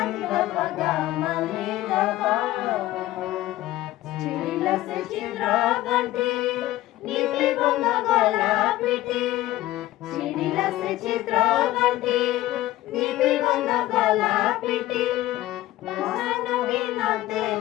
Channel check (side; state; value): right; quieter; 15.9 dB